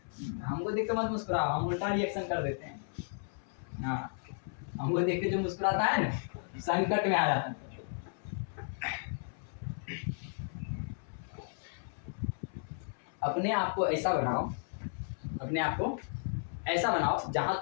हमको देख के मत मुस्कुराओ, हम उल्टा रिएक्शन कर देते हैं। हाँ, हमको देख के जो मुस्कुराता है ना, संकट में आ जाता है। अपने आप को ऐसा बनाओ, अपने आप को ऐसा बनाओ जहां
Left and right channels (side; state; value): right; silent; 55 dB below the other